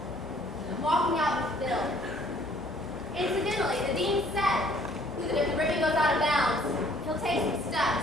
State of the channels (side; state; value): both; normal; correlation 0.59